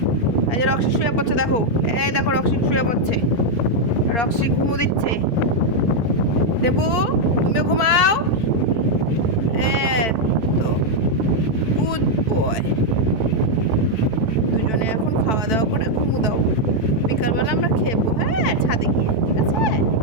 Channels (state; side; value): late; right; 4.5 ms